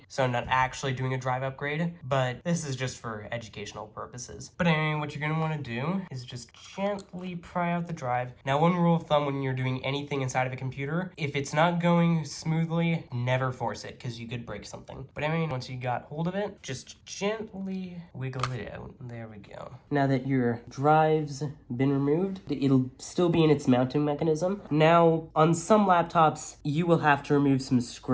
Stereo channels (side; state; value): both; identical; correlation 1.00